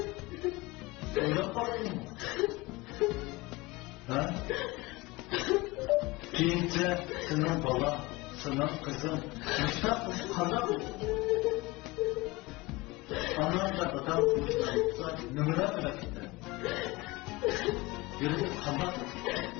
Öyle baktın mı? Ha? Keyince senin bala, senin kızın, müştak kandak olur. Anlamda dadam müştak olsa numara bırakırdı. Yürüdü kandak olur.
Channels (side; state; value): right; quieter; 22.4 dB